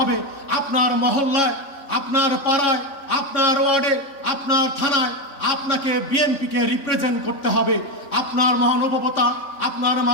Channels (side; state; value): right; late; 3.6 ms